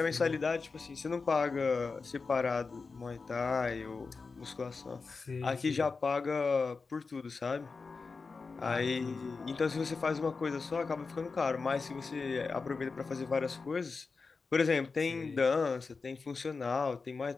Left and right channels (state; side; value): quieter; right; 4.5 dB